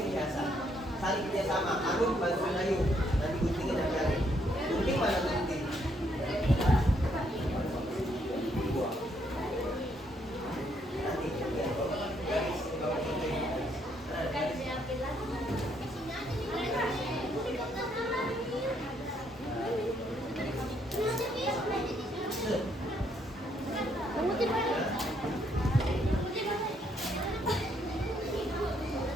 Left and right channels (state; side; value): normal; both; correlation 0.72